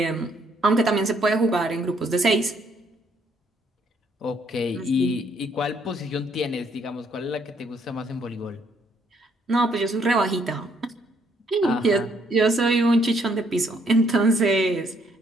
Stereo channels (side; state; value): both; normal; correlation 0.69